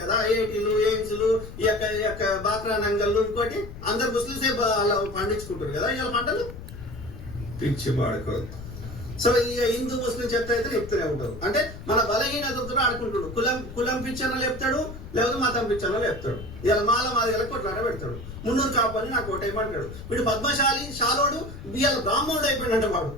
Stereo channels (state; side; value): noise; left; rumble, 12 dB below the sound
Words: కదా, ఐఐటీలు, ఎయిమ్స్లు, ఈ యొక్క బాక్రా నంగళ్ళు, ఇంకోటి అందరు ముస్లింసే అలా పండించుకుంటారు కదా ఇవాళ పంటలు. పిచ్చి పాడుకోదు. సో ఈ హిందూ ముస్లిం చెత్త అయితే చెప్తూనే ఉంటారు. అంటే మన బలహీనతతో ఆడుకుంటాడు. కులం పిచ్చర్లో చెప్తాడు, లేకపోతే మతం పిచ్చర్లో చెప్తాడు. ఇలా మాది కొట్లాట పెడతాడు. మున్నూరు కాపని నాకు ఓటేయమంటాడు. వీడు పద్మశాలి షాలోడు ఇవాళ బ్రాహ్మణుడు అయిపోయినంట. వాడు